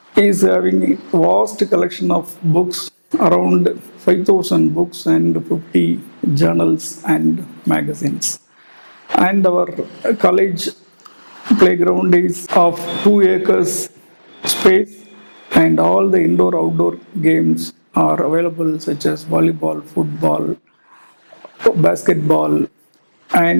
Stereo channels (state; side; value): inverted; both; correlation -1.00